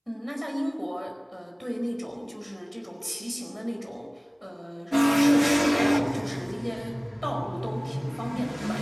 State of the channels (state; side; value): identical; both; correlation 1.00